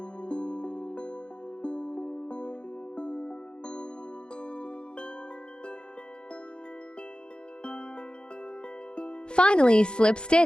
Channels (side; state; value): right; late; 0.050 ms